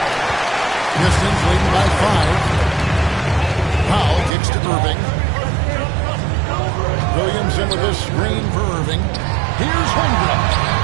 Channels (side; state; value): left; drops out; at 4.3 s